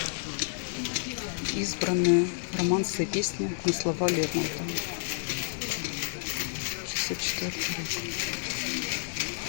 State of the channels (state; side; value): silent; right; 58 dB below the other